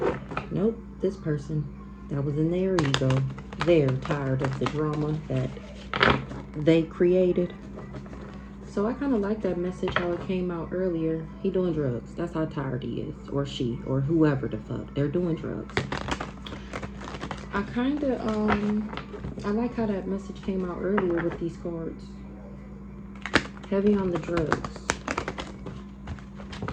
Nope, this person that was in their ego. They're tired of the drama that they created. So I kind of like that message, how it came out earlier. He doing drugs. That's how tired he is. Or she. Or whoever the fuck. They're doing drugs. I kind of, I like how that message came out earlier with these cards. Heavy on the drugs.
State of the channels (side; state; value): both; identical; correlation 1.00